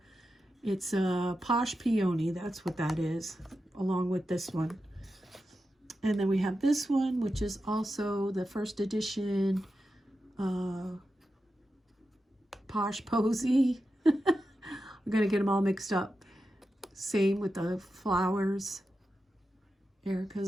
It's a Plush Peony, that's what that is, along with this one. And then we have this one, which is also the first edition Posh Posy. I'm going to get them all mixed up. Same with the flowers,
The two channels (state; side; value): normal; both; correlation 0.90